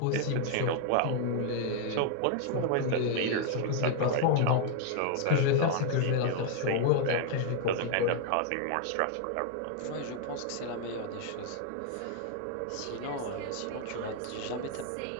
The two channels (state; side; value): different; both; correlation 0.00